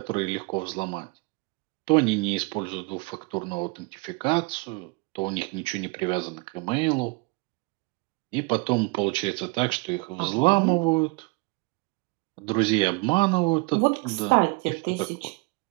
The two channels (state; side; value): quieter; left; 28.1 dB